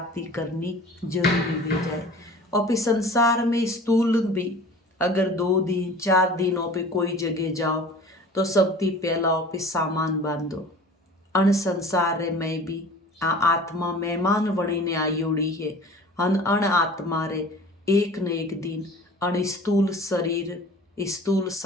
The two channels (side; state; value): both; normal; correlation 0.43